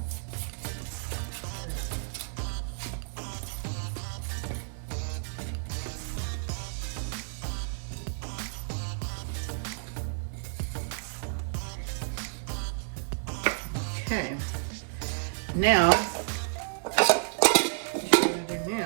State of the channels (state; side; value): silent; left; 57 dB below the other